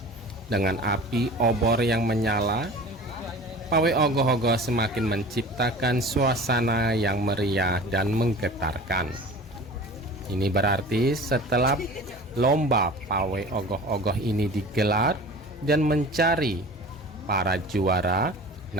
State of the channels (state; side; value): normal; both; correlation 0.39